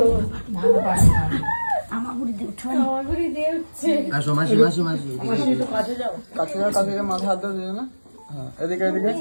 কাছে মাথা হাত দিয়ে না। হ্যাঁ এদিকে এদিকে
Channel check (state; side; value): inverted; both; correlation -1.00